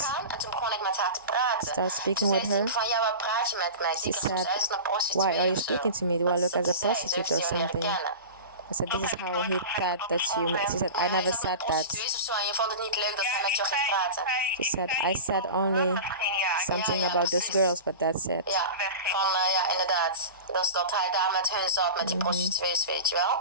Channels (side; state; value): both; inverted; correlation -0.31